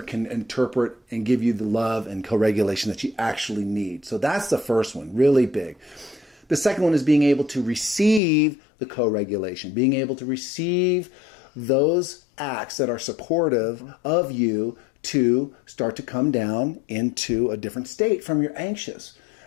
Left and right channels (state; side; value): drops out; right; at 8.2 s